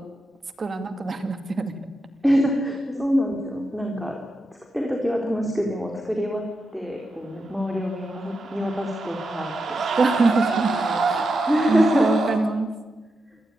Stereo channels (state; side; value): normal; both; correlation 0.87